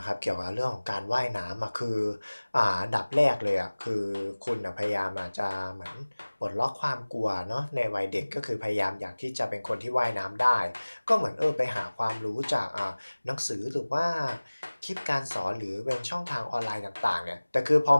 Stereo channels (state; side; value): inverted; both; correlation -1.00